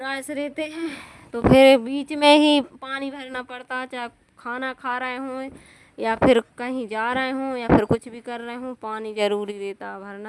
से रहते हैं तो फिर बीच में ही पानी भरना पड़ता, चाहे खाना खा रहे हों या फिर कहीं जा रहे हों या फिर कुछ भी कर रहे हों, पानी ज़रूरी रहता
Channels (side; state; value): both; identical; correlation 1.00